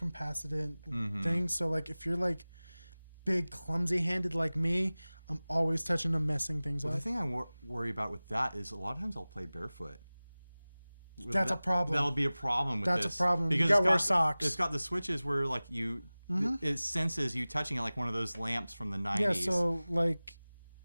things. So like if you're like big clumsy handed like me, I'm always touching them, messing things up. The thing I worry about with that is a lot of times I'll play barefoot. That's a problem. That'll be a problem with this. That's a problem. Because you gotta wear socks. It's got the switches where like it senses you touching it like one of those lamps from the 90s. Yeah, so like,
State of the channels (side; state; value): both; inverted; correlation -0.98